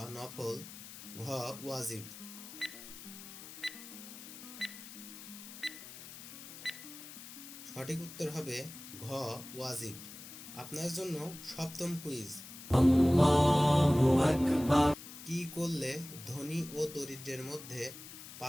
নফল, ঘ ওয়াজিব। সঠিক উত্তর হবে ঘ ওয়াজিব। আপনার জন্য সপ্তম কুইজ। কি করলে ধনী ও দরিদ্রের মধ্যে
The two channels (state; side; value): noise; left; hiss, 14 dB below the sound